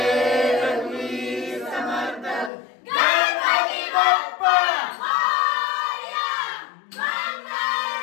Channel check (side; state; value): right; drops out; at 2.5 s